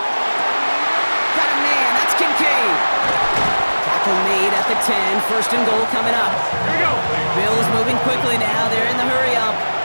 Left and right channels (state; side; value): inverted; both; correlation -1.00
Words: Got a man, that's Kincaid. Tackle made at the 10, first and goal coming up. Here we go. Bills moving quickly now, they're in the hurry up.